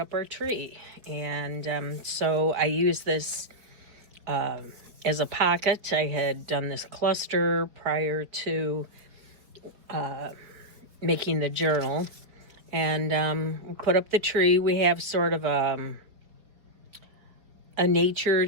our tree, and so I use this as a pocket. I had done this cluster prior to making the journal, and we put up the tree. We have sort of a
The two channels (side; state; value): left; late; 4.5 ms